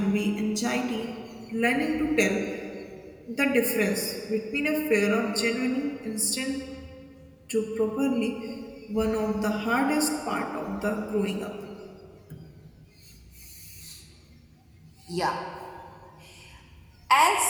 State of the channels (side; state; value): both; identical; correlation 1.00